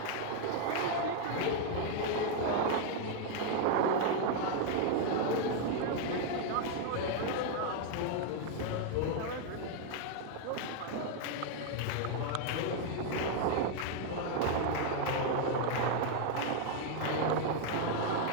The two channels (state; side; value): different; both; correlation 0.00